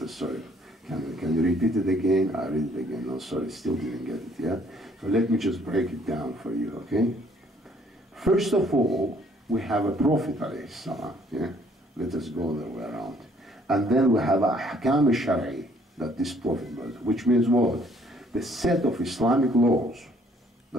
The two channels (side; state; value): both; normal; correlation 0.62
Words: sorry. Can you repeat it again? I read it again. No, sorry, still didn't get it, yeah? So let me just break it down for you, okay? First of all, we have a Prophet alayhi salam, yeah? Let us go the way around. And then we have ahkam al-shar'i, that this Prophet was, which means what? The set of Islamic laws